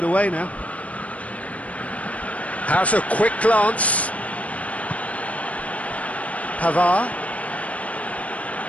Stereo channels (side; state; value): right; late; 0.067 ms